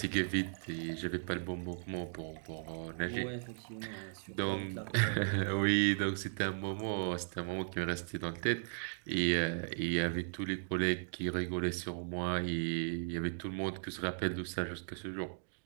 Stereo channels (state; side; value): silent; left; digital silence